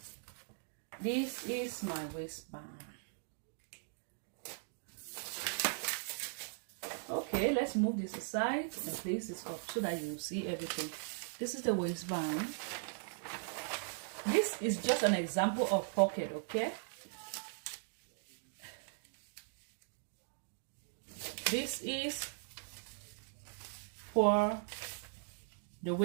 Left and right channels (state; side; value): silent; left; digital silence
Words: this is my waistband. Okay, let's move this aside and place this up so that you see everything. This is the waistband. This is just an example of pocket, okay? This is for the